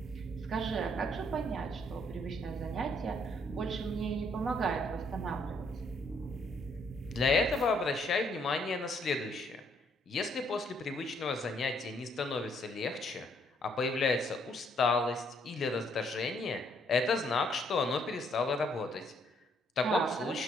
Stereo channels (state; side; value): normal; both; correlation 0.69